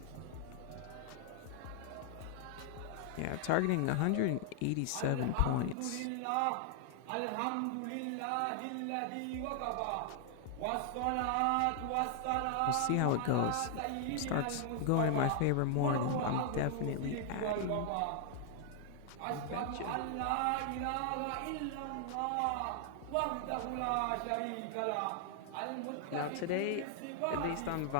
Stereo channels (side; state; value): both; different; correlation 0.00